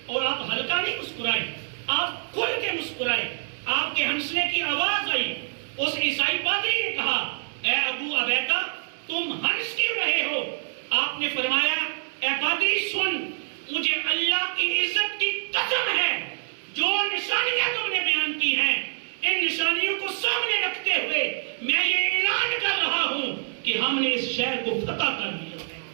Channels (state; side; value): silent; left; 61 dB below the other